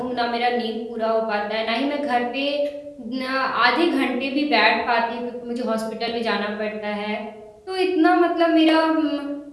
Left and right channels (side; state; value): both; identical; correlation 1.00